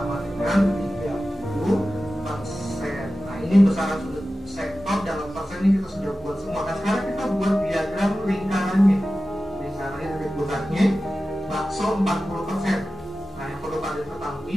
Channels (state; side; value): normal; both; correlation 0.94